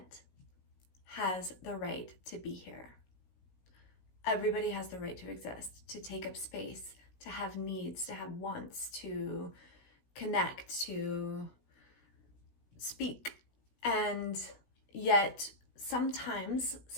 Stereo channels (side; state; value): right; late; 17 ms